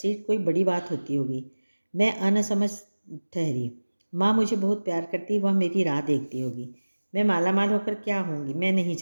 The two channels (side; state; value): both; inverted; correlation -1.00